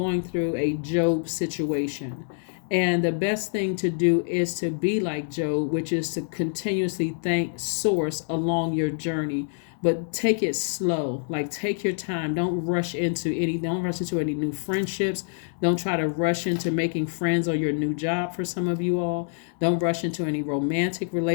through a Job situation. And the best thing to do is to be like Job, which is to continuously thank source along your journey. But take it slow. Like, take your time. Don't rush into any new friendships. Don't try to rush into making friends or your new job for some of you all. Don't rush into any romantic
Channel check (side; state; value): right; silent; 61 dB below the other